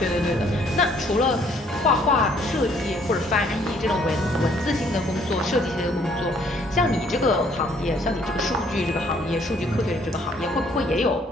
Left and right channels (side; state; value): both; normal; correlation 0.63